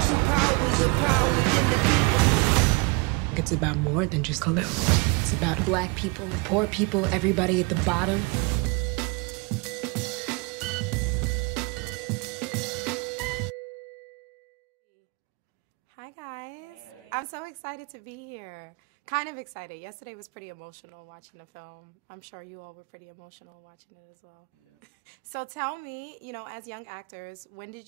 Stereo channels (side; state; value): left; quieter; 29.1 dB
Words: true power is the power within the people. It's about more than just color. It's about black people, poor people, everybody at the bottom. Hi guys. Hey. I'm so excited to be here. Kind of excited. Yesterday was pretty emotional watching the film. I'm sure you all were pretty emotional watching it as well. Yeah. So tell me, you know, as young actors, when